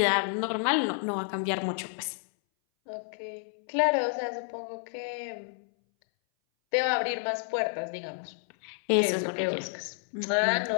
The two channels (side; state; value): right; silent; 58 dB below the other